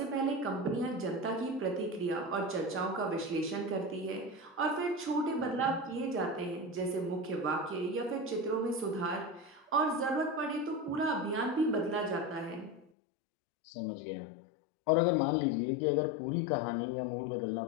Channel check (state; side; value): drops out; right; at 12.9 s